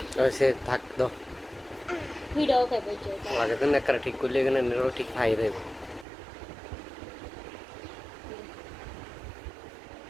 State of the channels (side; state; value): left; drops out; at 6.1 s